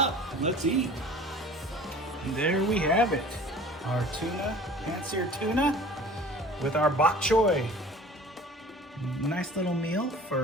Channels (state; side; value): normal; both; correlation 0.45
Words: and let's eat. And there we have it, our tuna, pan-seared tuna with our bok choy. Nice little meal